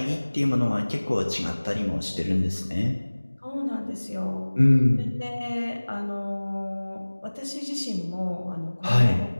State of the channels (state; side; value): inverted; both; correlation -1.00